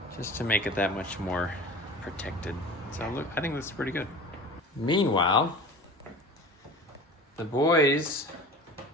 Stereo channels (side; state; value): both; normal; correlation 0.38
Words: Just to make it that much more protected. So look, I think this is pretty good. Meanwhile, the boys